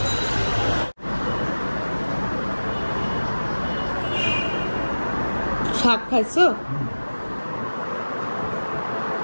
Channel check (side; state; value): both; inverted; correlation -1.00